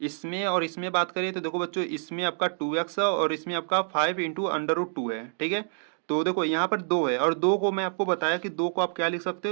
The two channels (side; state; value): left; silent; digital silence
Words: इसमें और इसमें बात करें तो देखो बच्चों इसमें आपका 2x है और इसमें आपका 5 इंटू अंडर रूट 2 है, ठीक है। तो देखो यहाँ पर 2 है और 2 को मैं आपको बताया कि 2 को आप क्या लिख सकते